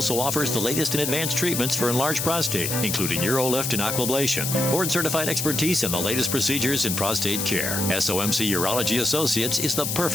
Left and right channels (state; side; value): noise; left; hiss, 1 dB below the sound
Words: offers the latest in advanced treatments for enlarged prostate, including UroLift and Aquablation, board-certified expertise in the latest procedures in prostate care. SOMC Urology Associates is the